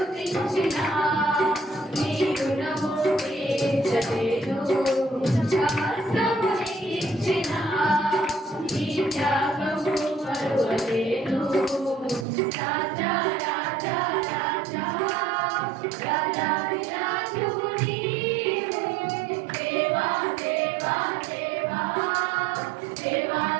నీ రుణము తీర్చలేను, సమస్తము నీకిచ్చిన నీ త్యాగము మరువలేను. రాజా రాజా రాజా రాజాది రాజువు నీవే, దేవా దేవా దేవా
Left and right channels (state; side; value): drops out; left; at 12.2 s